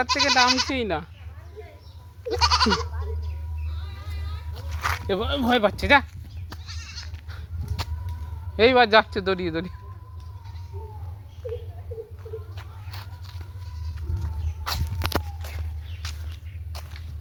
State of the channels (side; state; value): both; identical; correlation 1.00